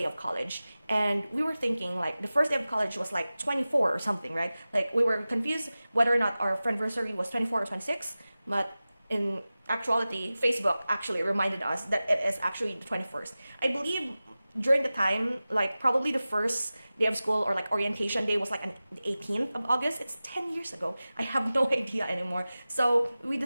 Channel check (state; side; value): inverted; both; correlation -0.96